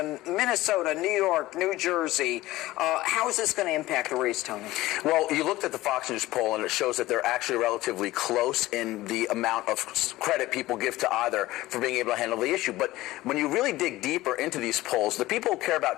Minnesota, New York, New Jersey. How is this going to impact the race, Tony? Well, you looked at the Fox News poll, and it shows that they're actually relatively close in the amount of credit people give to either for being able to handle the issue. But when you really dig deeper into these polls, the people who care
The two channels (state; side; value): quieter; right; 17.5 dB